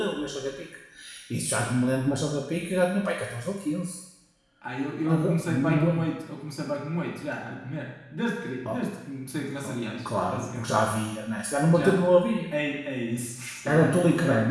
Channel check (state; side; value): identical; both; correlation 1.00